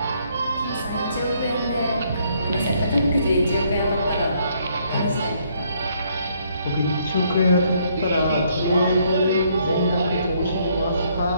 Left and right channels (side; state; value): both; inverted; correlation -0.69